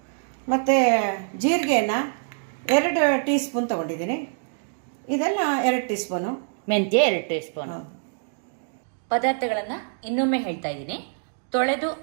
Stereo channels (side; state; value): left; silent; digital silence